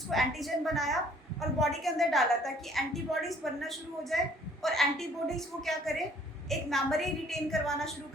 को एंटीजन बनाया और बॉडी के अंदर डाला ताकि एंटीबॉडीज बनना शुरू हो जाए, और एंटीबॉडीज वो क्या करे, एक मेमोरी रिटेन करवाना शुरू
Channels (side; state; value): both; normal; correlation 0.59